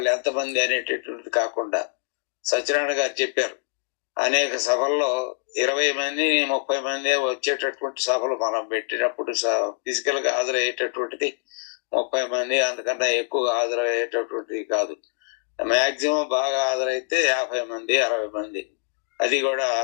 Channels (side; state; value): right; silent; 59 dB below the other